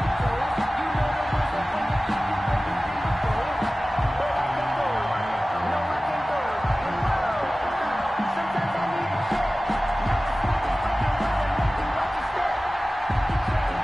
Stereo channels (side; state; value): both; normal; correlation 0.97